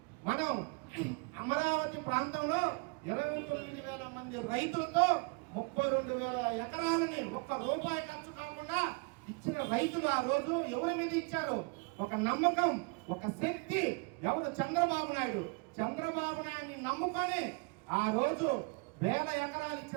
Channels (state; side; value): quieter; left; 31.7 dB